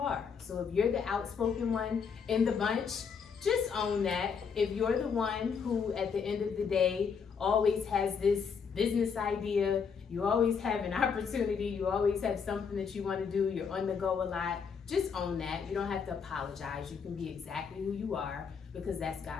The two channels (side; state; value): right; quieter; 6.2 dB